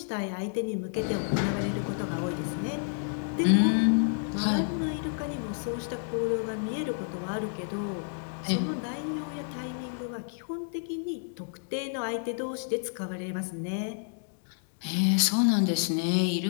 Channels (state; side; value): silent; right; digital silence